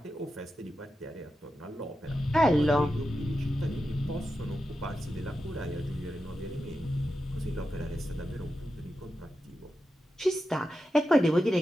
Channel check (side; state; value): both; normal; correlation 0.89